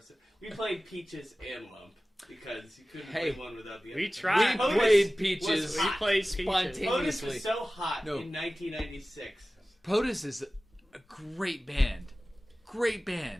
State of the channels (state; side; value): normal; both; correlation 0.96